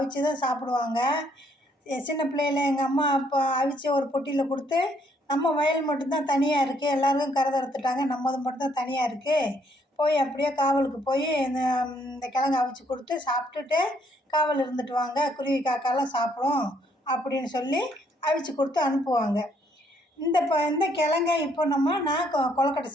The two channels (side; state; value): both; normal; correlation 0.69